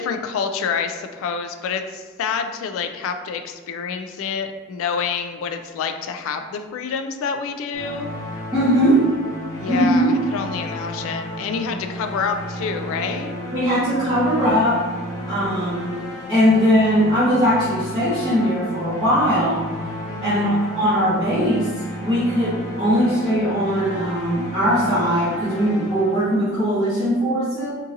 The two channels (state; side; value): normal; both; correlation 0.41